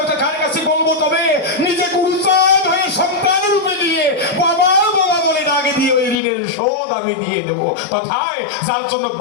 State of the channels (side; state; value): right; drops out; at 6.2 s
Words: কার কাছে বলবো? তবে নিজে গুরুচাঁদ হয়ে সন্তান রূপে নিয়ে বাবা বাবা বলে ডাকে দিয়ে ওই ঋণের শোধ আমি দিয়ে দেবো। তথায় যার জন্য